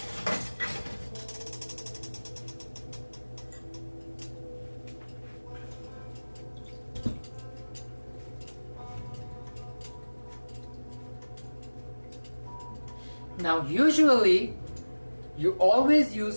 Now, usually, you always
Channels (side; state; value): both; inverted; correlation -1.00